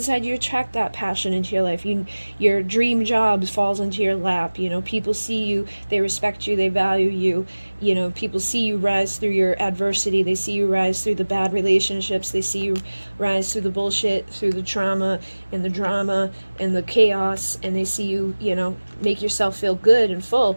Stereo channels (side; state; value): both; inverted; correlation -1.00